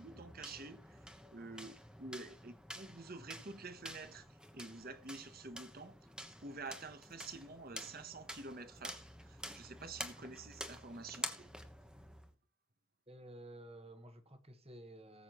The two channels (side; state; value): both; normal; correlation 0.33